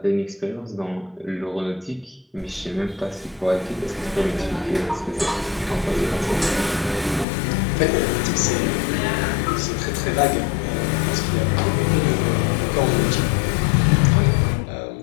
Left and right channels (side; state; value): right; drops out; at 7.2 s